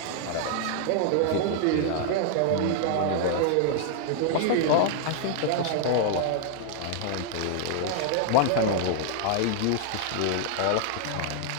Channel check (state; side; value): different; both; correlation -0.01